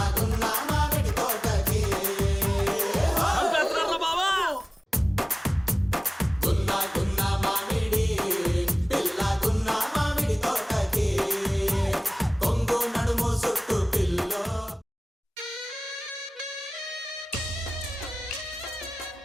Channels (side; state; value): both; normal; correlation 0.98